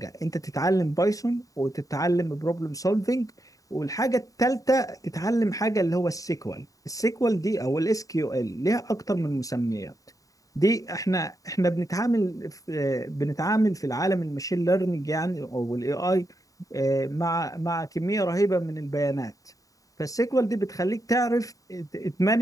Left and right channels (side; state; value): right; late; 0.16 ms